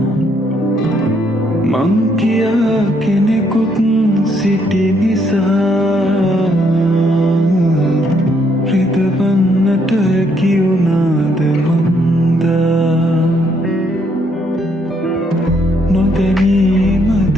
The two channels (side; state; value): both; normal; correlation 0.71